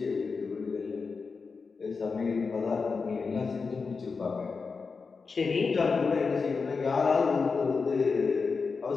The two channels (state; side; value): quieter; right; 4.8 dB